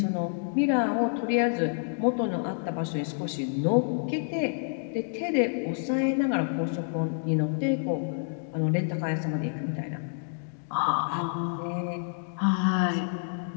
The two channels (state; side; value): silent; right; digital silence